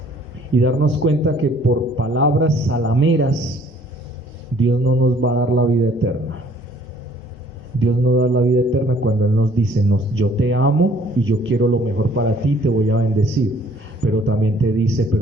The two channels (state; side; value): normal; both; correlation 0.58